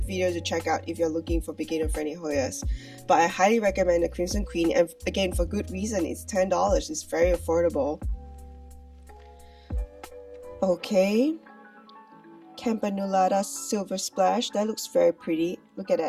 video to check out if you're looking for beginner friendly Hoyas. But I highly recommend the Crimson Queen, and again, for good reason. It's $10. It's very affordable. Okay, Campanulata Silver Splash. That looks very pretty. Look at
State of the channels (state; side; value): identical; both; correlation 1.00